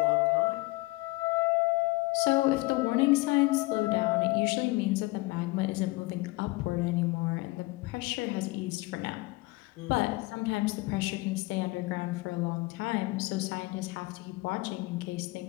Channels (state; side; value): quieter; right; 22.6 dB